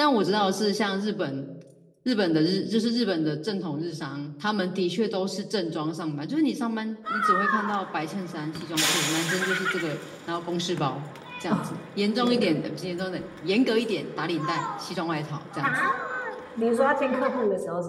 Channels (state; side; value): identical; both; correlation 1.00